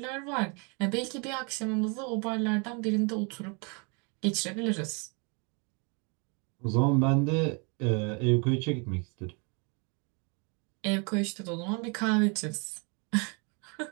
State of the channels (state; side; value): quieter; left; 33.5 dB